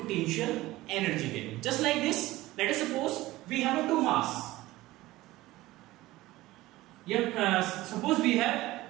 एनर्जी कहेंगे. Just like this, let us suppose we have two mass, suppose we have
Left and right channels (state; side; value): quieter; left; 17.8 dB